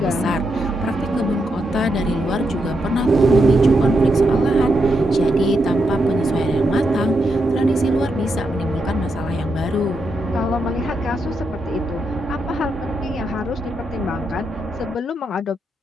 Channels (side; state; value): both; normal; correlation 0.82